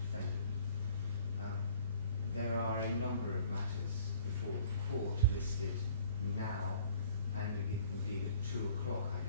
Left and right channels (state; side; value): inverted; both; correlation -0.52